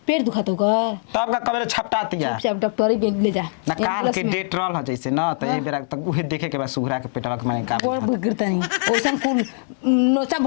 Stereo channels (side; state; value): right; silent; digital silence